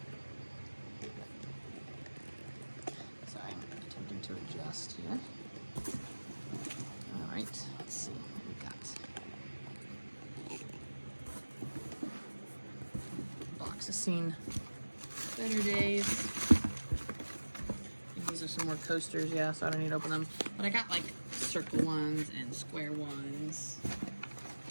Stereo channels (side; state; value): both; inverted; correlation -1.00